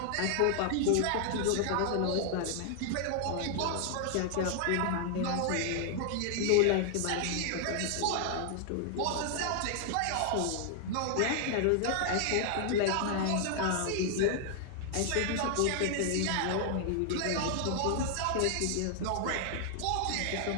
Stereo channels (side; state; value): both; different; correlation 0.00